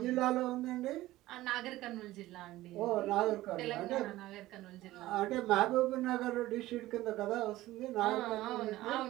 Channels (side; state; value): left; quieter; 16.6 dB